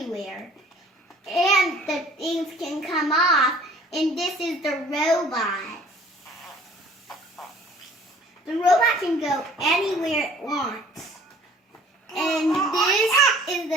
and the things can come off. And this is the robot. The robot can go anywhere it wants. And this is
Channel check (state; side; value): normal; both; correlation 0.52